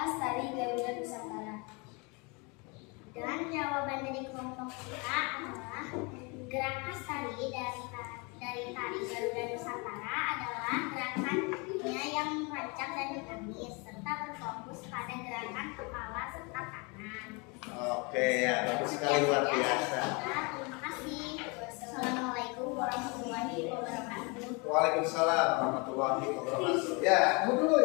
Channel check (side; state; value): right; quieter; 30.1 dB